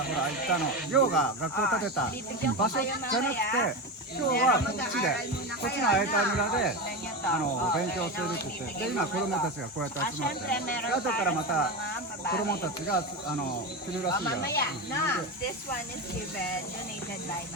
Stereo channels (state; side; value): normal; both; correlation 0.19